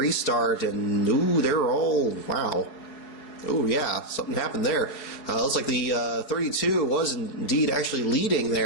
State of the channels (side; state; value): right; late; 4.7 ms